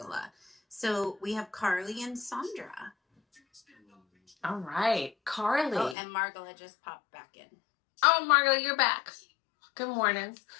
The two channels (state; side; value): drops out; right; at 6.0 s